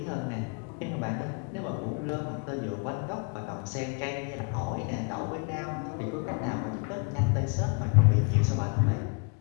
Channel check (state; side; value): quieter; right; 35.6 dB